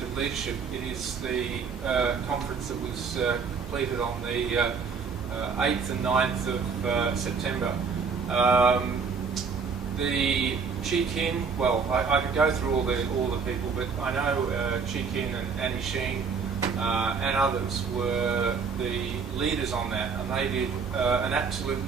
of leadership, it is the conference that was completed on the 8th and 9th of September. The Chi Kin, well, I could go through all the people, but I know Chi Kin and Annie Sheen and others were the leaders on that, and they did an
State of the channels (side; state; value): left; quieter; 5.5 dB